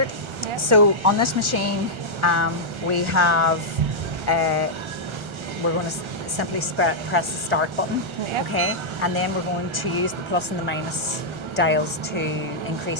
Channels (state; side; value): late; left; 1.3 ms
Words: Yeah. So on this machine, we have, we're going to simply press the start button, Yeah. okay? And then we're going to use the plus and the minus dials to